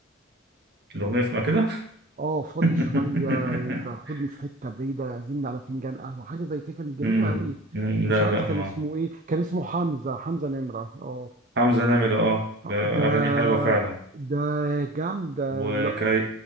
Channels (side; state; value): both; normal; correlation 0.39